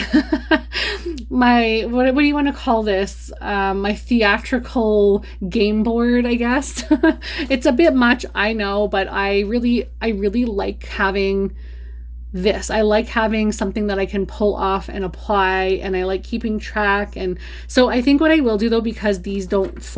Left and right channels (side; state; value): both; identical; correlation 1.00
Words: my what do you want to call this, my theatrical game board, I guess. It's a bit much, I know, but I really like having this. I like having something that I can pull off and apply, and I like keeping track. And so I think what I will do though, because these don't